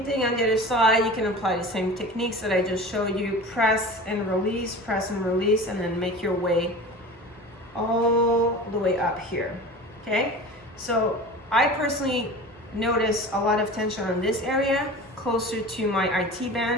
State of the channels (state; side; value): normal; both; correlation 0.36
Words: thing on the other side. You can apply the same techniques that I just showed you. Press and release, and then make your way all the way up here, okay? So I personally notice a lot of tension on this area, closer to my IT